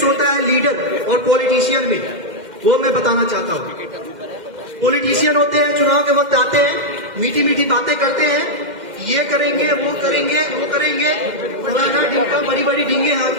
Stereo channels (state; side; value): late; left; 2.1 ms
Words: होता है लीडर और पॉलिटिशियन में, वो मैं बताना चाहता हूँ। पॉलिटिशियन होते हैं, चुनाव के वक्त आते हैं, मीठी मीठी बातें करते हैं, ये करेंगे वो करेंगे वो करेंगे, फलाना ढिमका बड़ी बड़ी ढींगे